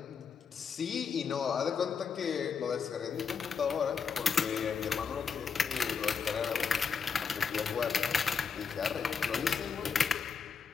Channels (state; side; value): quieter; right; 6.1 dB